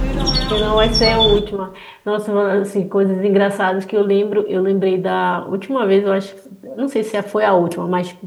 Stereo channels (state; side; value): identical; both; correlation 1.00